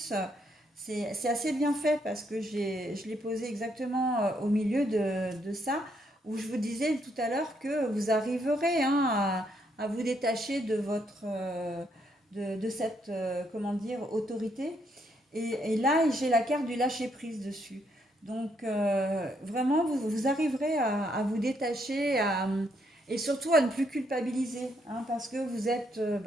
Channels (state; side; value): normal; both; correlation 0.74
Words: c'est assez bien fait parce que je l'ai posé exactement au milieu de ça, où je vous disais tout à l'heure que vous arriverez, hein, à vous détacher de de cette, comment dire, autorité. Et là, j'ai la carte du lâcher-prise dessus. Donc, vraiment, vous arriverez à vous détacher et surtout à ne plus culpabiliser, hein, parce que vous êtes